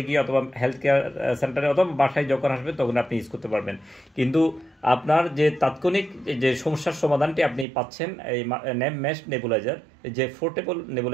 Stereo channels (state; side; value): drops out; left; at 7.7 s